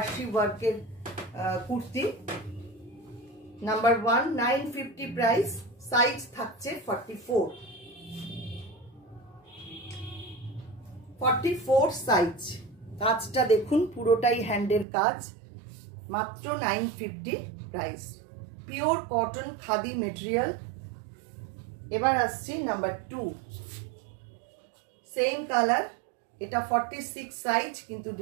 ওয়ার্কের কুর্তি, নাম্বার 1, 950 প্রাইস, সাইজ থাকছে 44 সাইজ। কাজটা দেখুন, পুরোটাই হ্যান্ডের কাজ, মাত্র 950 price, pure cotton khadi material. এবার আসছি নাম্বার 2, সেম কালার, এটা 46 সাইজ, কিন্তু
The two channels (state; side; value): drops out; left; at 14.9 s